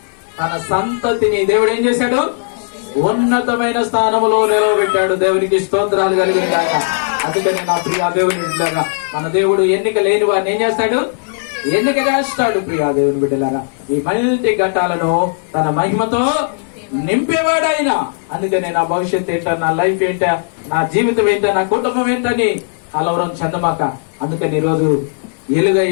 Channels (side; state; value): right; silent; digital silence